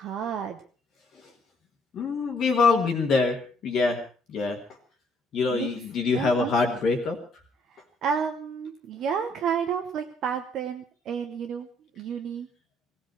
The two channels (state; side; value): normal; both; correlation 0.66